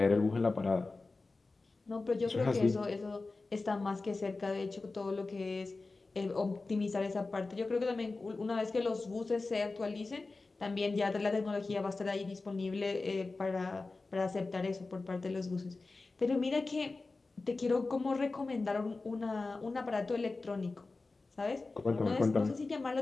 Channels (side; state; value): right; quieter; 3.6 dB